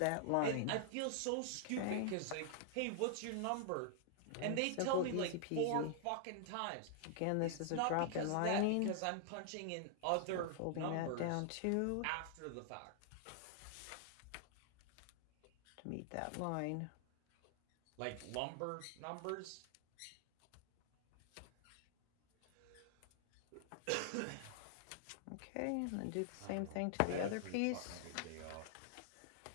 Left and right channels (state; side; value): different; both; correlation 0.00